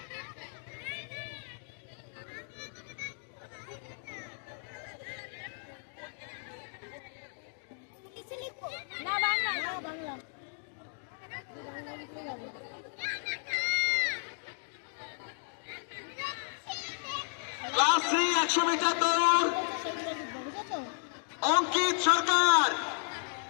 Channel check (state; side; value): silent; right; 55 dB below the other